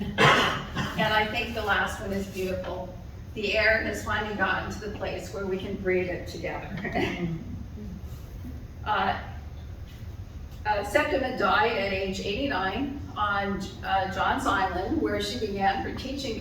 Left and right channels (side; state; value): both; identical; correlation 1.00